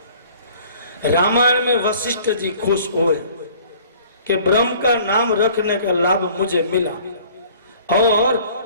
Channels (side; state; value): both; inverted; correlation -0.52